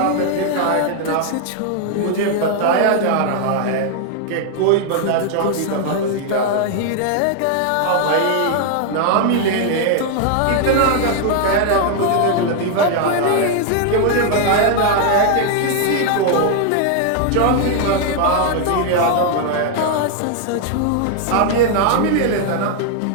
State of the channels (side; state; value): both; different; correlation 0.00